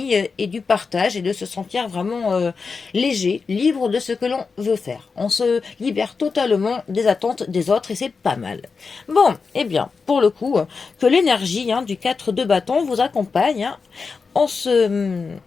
et du partage et de se sentir vraiment léger, libre de ce que l'on veut faire. On se libère totalement des attentes des autres et c'est pas mal. Bon, eh bien, pour le coup, que l'énergie du 4 de bâton vous accompagne en ce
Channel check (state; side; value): quieter; right; 4.9 dB